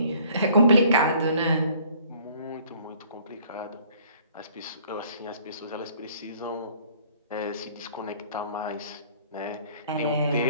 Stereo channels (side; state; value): both; inverted; correlation -0.57